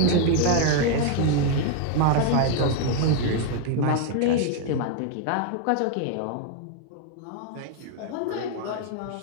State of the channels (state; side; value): different; both; correlation 0.00